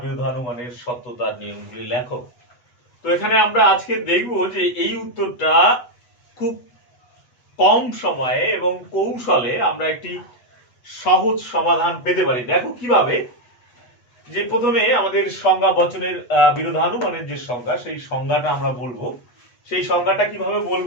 বিরোধানুমানের সত্যতার নিয়মগুলি লেখো। তো এখানে আমরা আজকে দেখব যে এই উত্তরটা খুব কম সময়ে এবং কৌশলে আমরা একটি সহজ সমাধান পেতে পারি। দেখো কিভাবে, যে প্রথমে আমাদের সংজ্ঞা বচনের বিরোধানুমানের যে সংজ্ঞা সেই সংজ্ঞাটা আমরা বলবো। সেই সংজ্ঞাটা কিভাবে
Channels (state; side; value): late; right; 8.1 ms